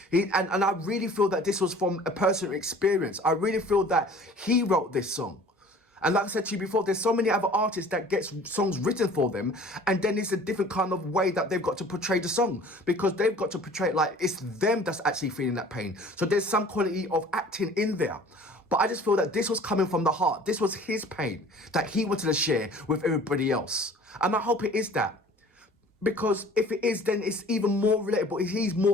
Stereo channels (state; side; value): normal; both; correlation 0.48